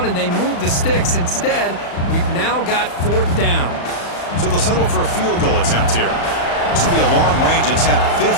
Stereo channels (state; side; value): late; right; 35 ms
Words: and they move the sticks. Instead, we've now got fourth down. So they'll settle for a field goal attempt here. This will be a long-range attempt,